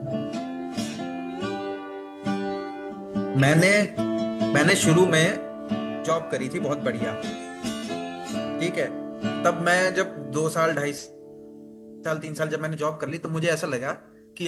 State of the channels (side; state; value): both; identical; correlation 1.00